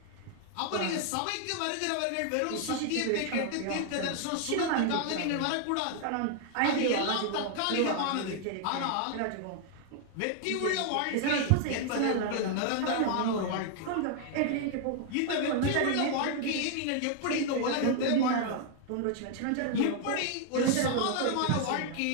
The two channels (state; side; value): different; both; correlation 0.00